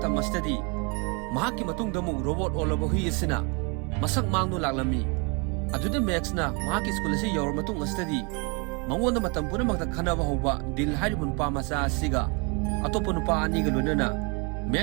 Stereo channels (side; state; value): left; quieter; 32.6 dB